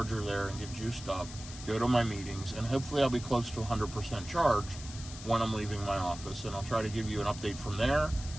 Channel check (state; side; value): noise; left; hiss, 13 dB below the sound